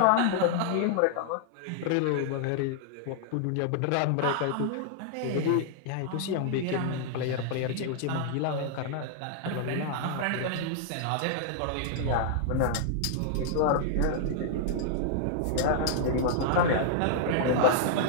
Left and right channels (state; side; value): different; both; correlation -0.01